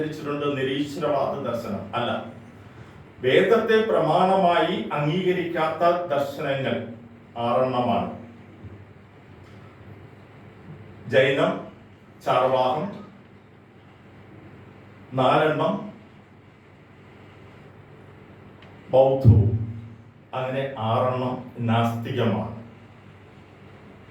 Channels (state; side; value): identical; both; correlation 1.00